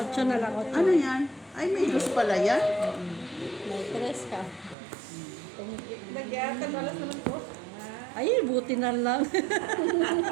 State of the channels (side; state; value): left; drops out; at 4.8 s